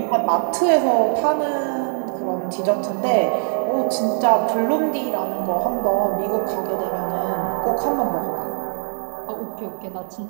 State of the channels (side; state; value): left; silent; digital silence